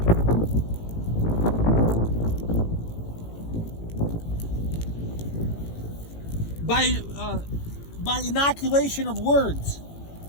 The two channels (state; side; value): late; right; 18 ms